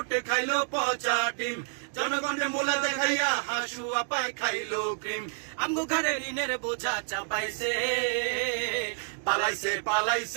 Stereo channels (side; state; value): left; silent; digital silence